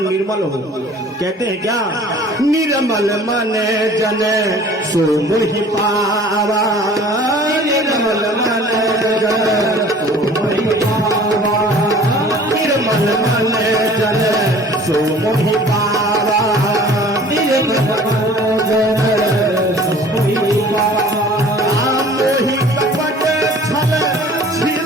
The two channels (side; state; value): both; normal; correlation 0.48